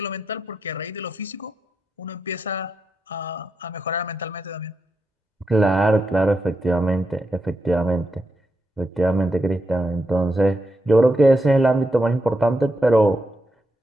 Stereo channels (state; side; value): normal; both; correlation 0.84